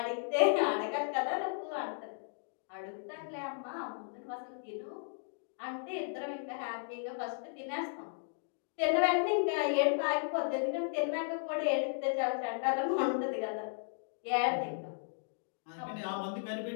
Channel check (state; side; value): silent; right; digital silence